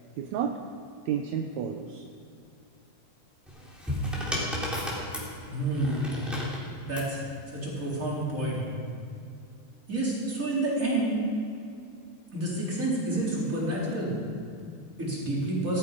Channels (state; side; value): normal; both; correlation 0.12